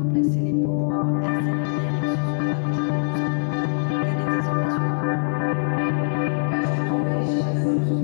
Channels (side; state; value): right; silent; 62 dB below the other